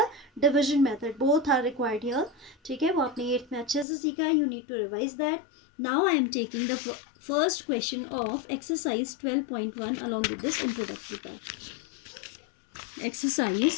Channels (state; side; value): drops out; right; at 3.9 s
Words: division method. Both are required here. ठीक है, वो आपने 8th में अच्छे से सीखा है. You need to revise that. Now I am taking the first question of exercise 12.1 along with this introductory part.